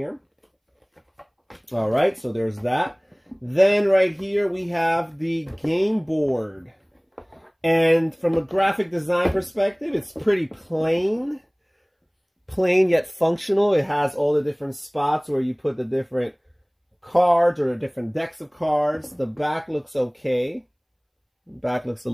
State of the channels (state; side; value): identical; both; correlation 1.00